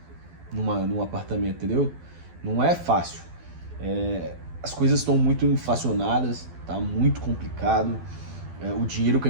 num apartamento, entendeu? Não é fácil. As coisas estão muito inflacionadas, tá muito complicado. O dinheiro que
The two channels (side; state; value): left; late; 12 ms